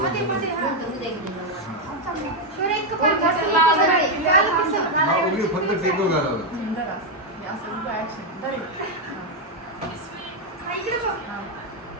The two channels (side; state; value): both; normal; correlation 0.03